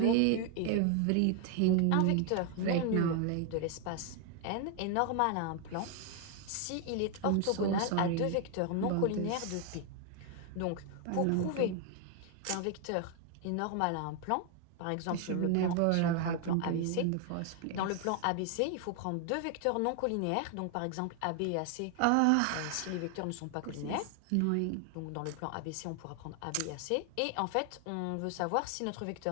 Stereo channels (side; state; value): both; different; correlation 0.00